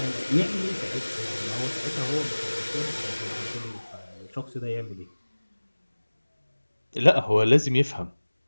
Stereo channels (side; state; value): both; inverted; correlation -1.00